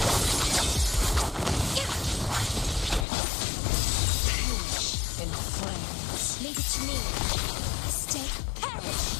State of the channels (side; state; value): right; drops out; at 3.1 s